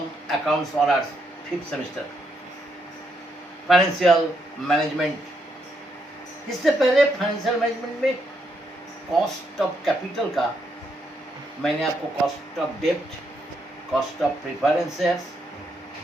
accounts honours 5th semester financial management. इससे पहले फाइनेंशियल मैनेजमेंट में कॉस्ट ऑफ कैपिटल का मैंने आपको कॉस्ट ऑफ डेब्ट, कॉस्ट ऑफ प्रेफरेंस शेयर्स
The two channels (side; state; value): both; normal; correlation 0.77